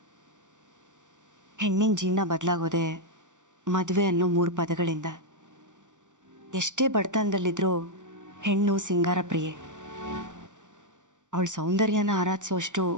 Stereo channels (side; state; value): left; late; 0.86 ms